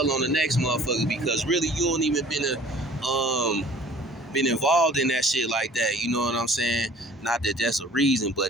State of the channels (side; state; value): both; normal; correlation 0.50